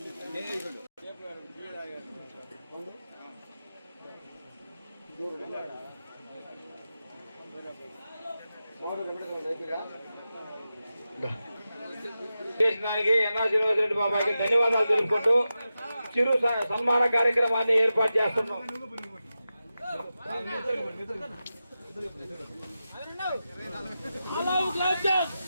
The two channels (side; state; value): both; inverted; correlation -0.92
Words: శ్రీనివాసరెడ్డి బాబాకి ధన్యవాదాలు తెలుపుకుంటూ చిరు సన్మాన కార్యక్రమాన్ని ఏర్పాటు చేస్తున్నాం.